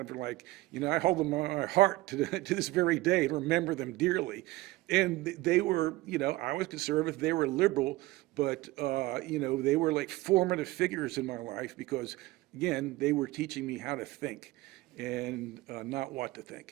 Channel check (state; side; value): quieter; left; 19.1 dB